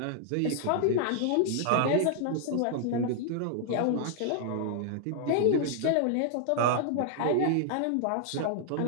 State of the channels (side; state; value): both; different; correlation -0.01